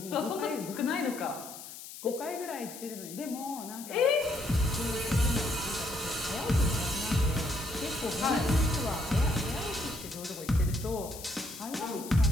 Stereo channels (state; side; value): noise; left; hiss, 13 dB below the sound